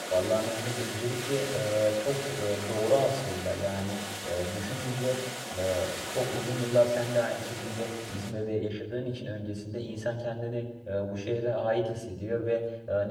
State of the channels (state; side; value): identical; both; correlation 1.00